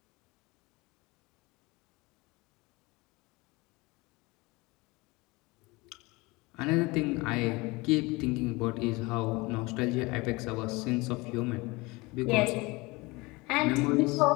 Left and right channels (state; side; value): quieter; right; 24.0 dB